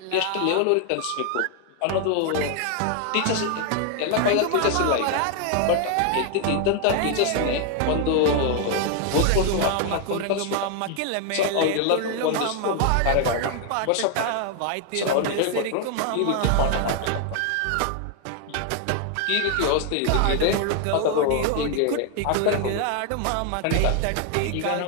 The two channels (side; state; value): both; different; correlation 0.00